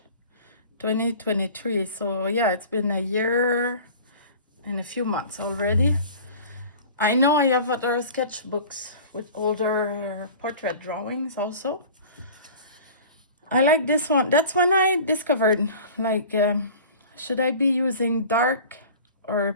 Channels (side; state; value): both; inverted; correlation -0.41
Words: 2023. So yeah, it's been a year and a few months already. I know I have other sketchbooks with older portrait drawings also. I like this one. That's when I discovered, like, should I be using dark or